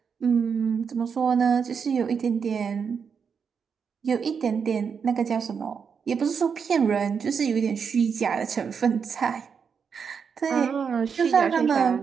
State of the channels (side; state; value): left; quieter; 6.4 dB